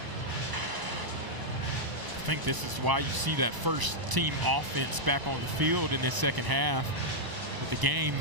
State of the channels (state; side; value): late; left; 1.0 ms